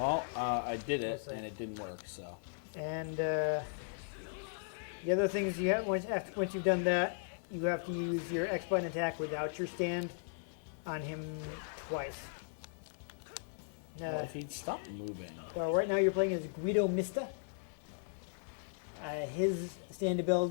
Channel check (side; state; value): right; silent; digital silence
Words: I did it, we'll see. and it didn't work. So. And the other things you have once you've done that, you have to use your X button attack without your stand on him twice. He'd stop moving. So right now you're playing as Guido Mista. His stand